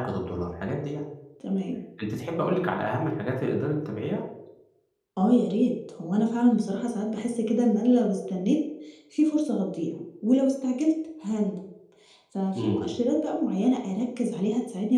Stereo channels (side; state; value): both; identical; correlation 1.00